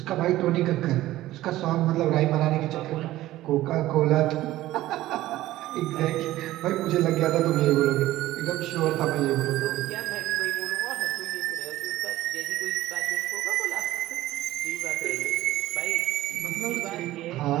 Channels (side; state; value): left; quieter; 15.7 dB